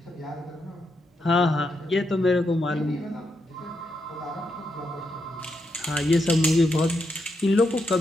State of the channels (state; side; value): normal; both; correlation 0.82